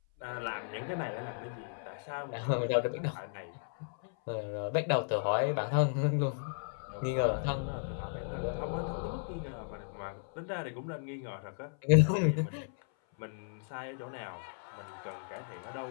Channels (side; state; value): right; silent; 54 dB below the other